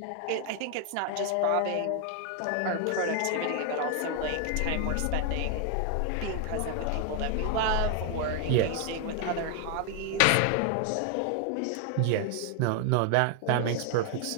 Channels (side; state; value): both; different; correlation 0.01